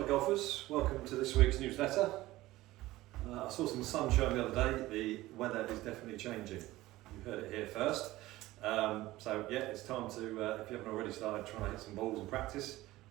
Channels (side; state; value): left; quieter; 17.4 dB